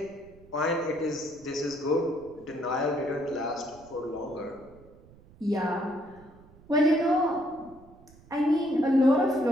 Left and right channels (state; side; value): noise; right; rumble, 24 dB below the sound